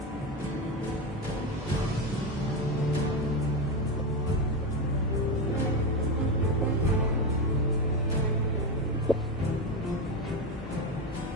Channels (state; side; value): normal; both; correlation 0.14